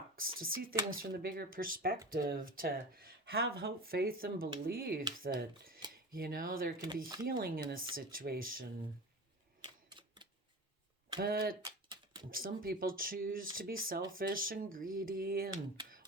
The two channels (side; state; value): both; normal; correlation 0.31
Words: to see things from the bigger perspective, to have hope, faith, and belief that, there can be healing in a situation. But some people choose to be selfish and greedy and